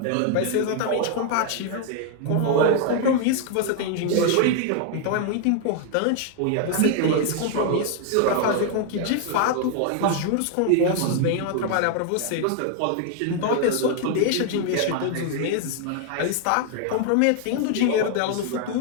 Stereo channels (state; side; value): different; both; correlation 0.00